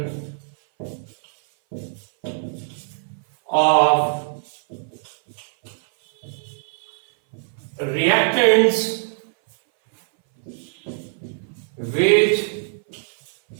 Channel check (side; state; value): left; silent; 60 dB below the other